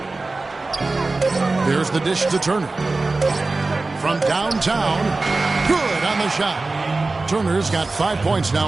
There's the dish to Turner. From downtown. Good on the shot. Turner's got 5 points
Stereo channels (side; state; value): left; quieter; 3.4 dB